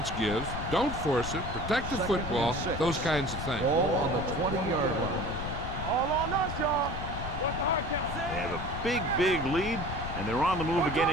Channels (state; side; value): noise; left; rumble, 6 dB below the sound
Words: gives, don't force it, protect the football, those kinds of things. Ball on the 20-yard line. All on us, y'all. What's the hard count? They have a big lead, and they're on the move again